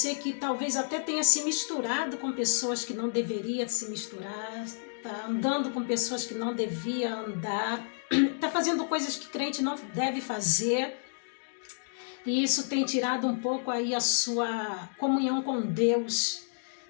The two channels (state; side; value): silent; right; digital silence